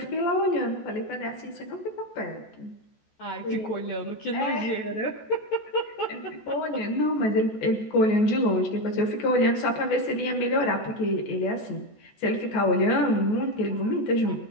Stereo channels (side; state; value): right; late; 14 ms